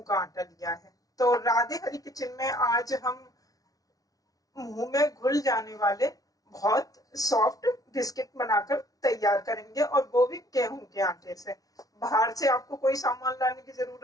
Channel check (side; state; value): right; late; 0.18 ms